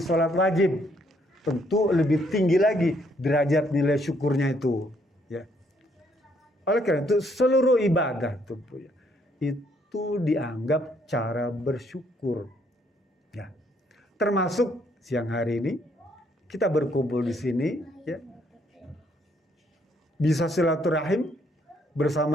sholat wajib. Tentu lebih tinggi lagi derajat nilai syukurnya itu, ya. Oleh karena itu seluruh ibadah itu dianggap cara bersyukur, ya. Termasuk siang hari ini kita berkumpul di sini, ya. Bisa silaturahim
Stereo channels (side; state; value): both; normal; correlation 0.69